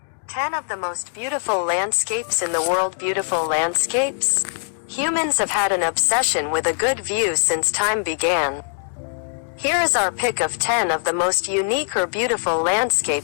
10 of the most beautiful landscapes in the world. Beautiful landscapes? Humans have had an obsession with a good view since time began. Here is our pick of 10 of the most unique or beautiful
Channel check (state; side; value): silent; right; digital silence